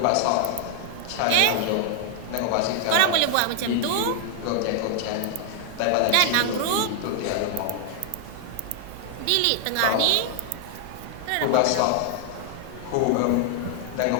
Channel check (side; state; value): both; different; correlation 0.00